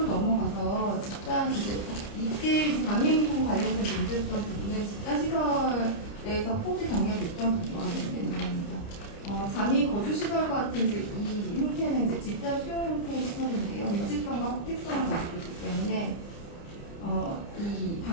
넘어가서 집단 이때 장애인 관련된 문제였던 부분은 집단 시설에서 포드 경력이 있던 부분과 관련된 내용입니다. 장애인 거주 시설 같은 이제 이 형태는 이제 집단 수용 형태의 시설인데요. 밀집성과 확대성을 가지고 있기 때문에 이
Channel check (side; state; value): right; late; 30 ms